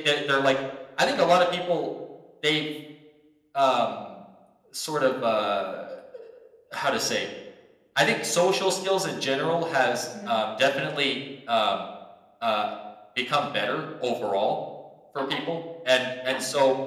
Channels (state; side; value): identical; both; correlation 1.00